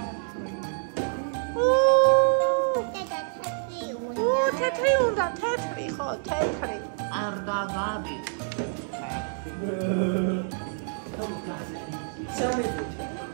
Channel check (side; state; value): left; silent; digital silence